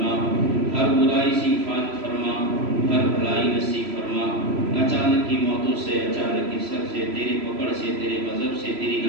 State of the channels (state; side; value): late; left; 3.0 ms